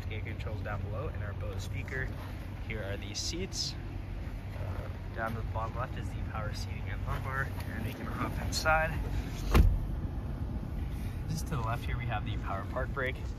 controls down below, and our Bose speaker. Here are the seats. Down to the bottom left is the power seating and lumbar, and we can hop inside. Just to the left here we have the power park brake.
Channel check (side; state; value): both; identical; correlation 1.00